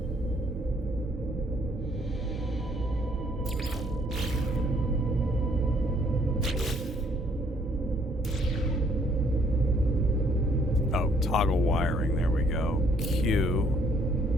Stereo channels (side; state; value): both; normal; correlation 0.65